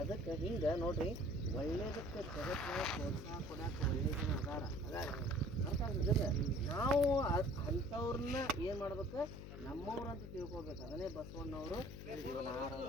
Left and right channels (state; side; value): noise; left; hum, 10 dB below the sound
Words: ಅದಕ್ಕೆ ಹಿಂಗೆ ನೋಡ್ರಿ, ಒಳ್ಳೇದಕ್ಕೆ ಜಗತ್ತಿನ ಪ್ರೋತ್ಸಾಹ ಕೊಡೋಕೆ ಒಳ್ಳೆ ಜನ ಅದಾರ ಅರ್ಥ ಆಗ್ತದೆ. ನಾವು ಅಂಥವ್ರನ್ನ ಏನು ಮಾಡ್ಬೇಕು, ನಮ್ಮವ್ರಂತ ತಿಳ್ಕೊಬೇಕು. ಅದನ್ನೇ ಬಸವಣ್ಣವರು ಇವನಾರವ